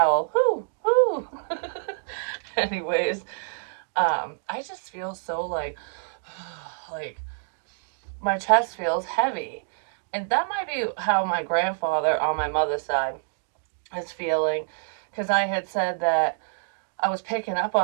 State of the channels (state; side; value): silent; left; digital silence